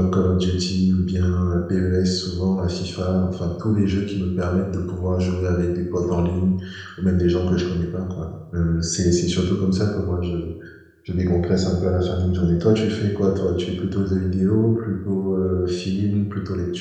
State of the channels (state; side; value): identical; both; correlation 1.00